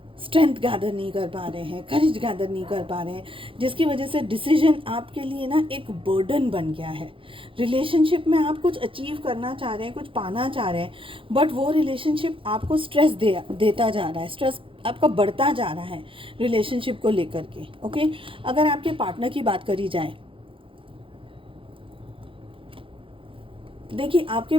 स्ट्रेंथ गैदर नहीं कर पा रहे हैं, करेज गैदर नहीं कर पा रहे हैं, जिसकी वजह से डिसीजन आपके लिए ना एक बर्डन बन गया है। रिलेशनशिप में आप कुछ अचीव करना चाह रहे हैं, कुछ पाना चाह रहे हैं, बट वो रिलेशनशिप आपको स्ट्रेस देता जा रहा है, स्ट्रेस आपका बढ़ता जा रहा है रिलेशनशिप को लेकर के। ओके, अगर आपके पार्टनर की बात करी जाए, देखिए आपके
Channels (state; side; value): late; left; 0.25 ms